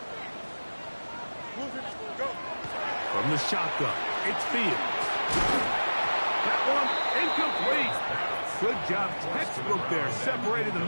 Go. From the shotgun, it's Fields. That one incomplete. Good job, textbook there, separating the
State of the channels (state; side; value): inverted; both; correlation -1.00